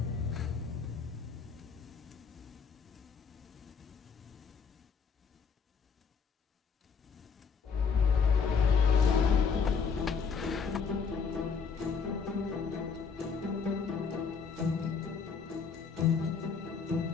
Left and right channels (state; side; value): quieter; right; 5.7 dB